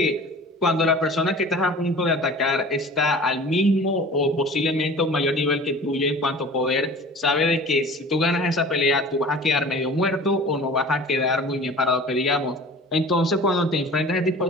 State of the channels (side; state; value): both; normal; correlation 0.42